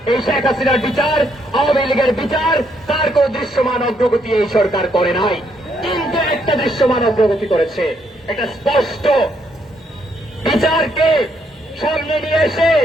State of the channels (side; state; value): both; normal; correlation 0.73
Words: এই শেখ হাসিনার বিচার, আওয়ামী লীগের বিচার, তার কোন দৃশ্যমান অগ্রগতি এই সরকার করে নাই। কিন্তু একটা দৃশ্যমান অগ্রগতি করেছে, একটা স্পষ্ট বিচারকে সামনে নিয়ে এসে